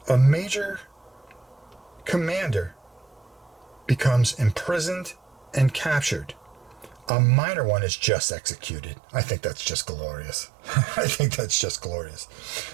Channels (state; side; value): drops out; left; at 7.1 s